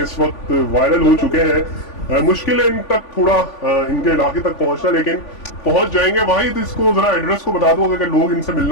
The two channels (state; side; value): late; right; 3.5 ms